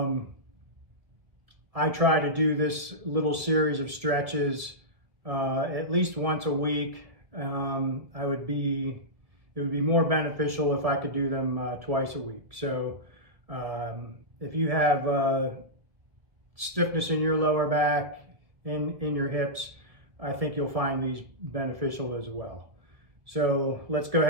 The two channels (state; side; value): late; left; 1.7 ms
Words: try to do this little series of stretches at least once a week. It would be more beneficial if I could do them twice a week. So if you have stiffness in your lower back and in your hips, I think you'll find these beneficial as well. So let's go